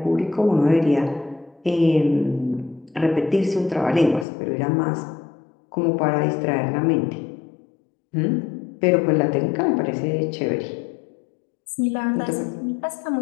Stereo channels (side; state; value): right; drops out; at 4.2 s